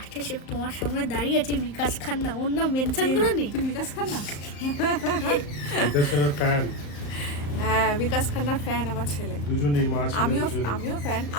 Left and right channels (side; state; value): right; late; 35 ms